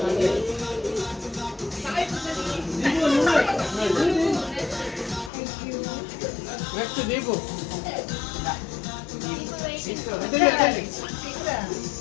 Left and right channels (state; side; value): drops out; right; at 5.3 s